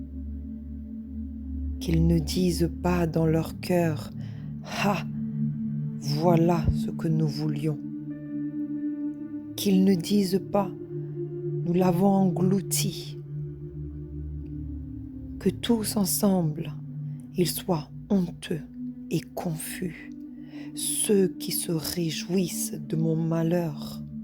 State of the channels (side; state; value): both; identical; correlation 1.00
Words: qu'ils ne disent pas dans leur cœur « Ah, voilà ce que nous voulions », qu'ils ne disent pas « Nous l'avons englouti », que tous ensemble, ils soient honteux et confus, ceux qui se réjouissent de mon malheur,